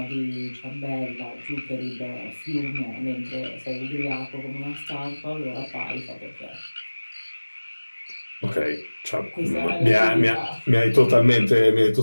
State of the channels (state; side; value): inverted; both; correlation -1.00